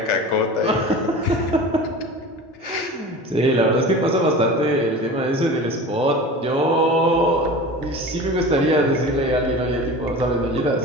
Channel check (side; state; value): both; normal; correlation 0.35